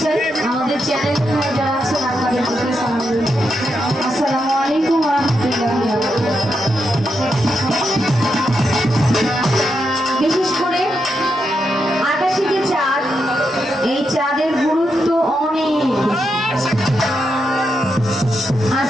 চাই। আমাদের চ্যানেল যারা আছেন আপনাদের প্রতি সালাম রইল। আসসালামু আলাইকুম ওয়া রাহমাতুল্লাহি। বিশেষ করে আকাশে যে চাঁদ, এই চাঁদের গুরুত্ব অনেক।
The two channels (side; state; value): both; normal; correlation 0.84